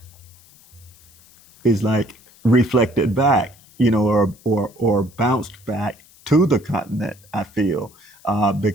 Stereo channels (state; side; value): noise; left; hiss, 27 dB below the sound